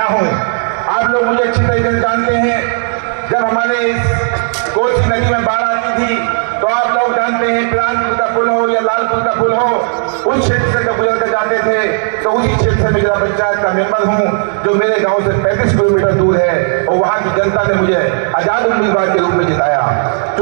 हूँ। आप लोग मुझे अच्छी तरीके से जानते हैं। जब हमारे इस कोसी नदी में बाढ़ आती थी तो आप लोग जानते हैं, पिलानपुर का पुल हो या लालपुर का पुल हो, उस क्षेत्र से जब गुजर कर जाते थे तो उसी क्षेत्र से मैं जिला पंचायत का मेंबर हूँ, जो मेरे गांव से 35 किलोमीटर दूर है, और वहाँ की जनता ने मुझे आजाद उम्मीदवार के रूप में जिताया।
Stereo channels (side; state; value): left; silent; 60 dB below the other